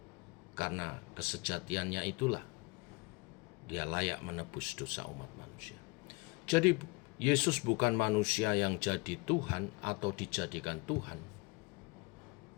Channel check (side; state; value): right; quieter; 26.7 dB